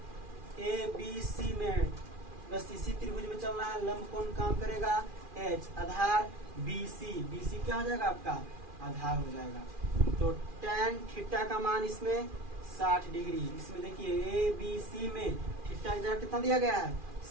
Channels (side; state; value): left; late; 2.4 ms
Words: ABC में, बस इसी त्रिभुज में चलना है। लंब कौन काम करेगा? H। आधार BC क्या हो जाएगा आपका? आधार हो जाएगा। तो tan थीटा का मान इसमें 60 डिग्री। इसमें देखिए ABC में थीटा का कितना दिया गया है?